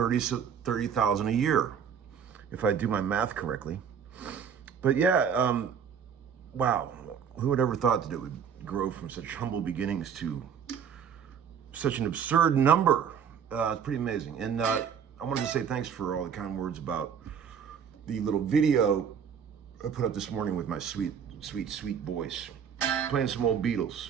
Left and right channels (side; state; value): left; quieter; 7.5 dB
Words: a year, if I do my math correctly. But yeah, wow, who would ever thought that it would grow from such humble beginnings to such an absurd number? It's pretty amazing. And I wanted to say thanks for all the kind words about the little video I put up this morning with my sweet voice, playing some old Beatles.